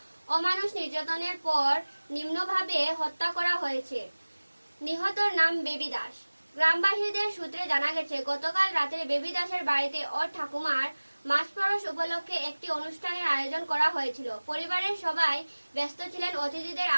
অমানুষ নির্যাতনের পর নিম্নভাবে হত্যা করা হয়েছে। নিহতর নাম বেবি দাস। গ্রামবাসীদের সূত্রে জানা গেছে, গতকাল রাতে বেবি দাসের বাড়িতে ওর ঠাকুমার মাসপরশ উপলক্ষে একটি অনুষ্ঠানের আয়োজন করা হয়েছিল। পরিবারের সবাই ব্যস্ত ছিলেন অতিথিদের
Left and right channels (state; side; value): inverted; both; correlation -1.00